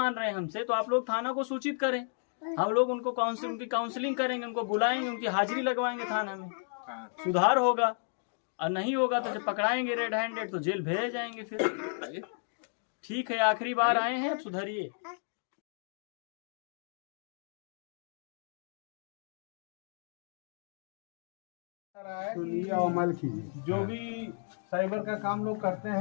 रहे हैं हमसे तो आप लोग थाना को सूचित करें, हम लोग उनको उनकी काउंसलिंग करेंगे, उनको बुलाएंगे, उनकी हाजिरी लगवाएंगे थाना में, सुधार होगा। और नहीं होगा तो जब पकड़ाएंगे रेड हैंडेड तो जेल भेज जाएंगे फिर। ठीक है, आखिरी बार आए हैं, अब सुधरिए। अमल कीजिए, जो भी साइबर का काम लोग करते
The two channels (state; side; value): silent; right; digital silence